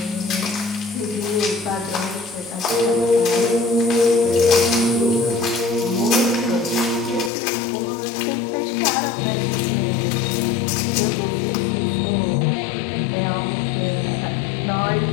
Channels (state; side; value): drops out; right; at 7.3 s